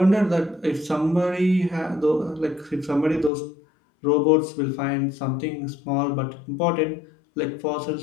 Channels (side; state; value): right; drops out; at 3.3 s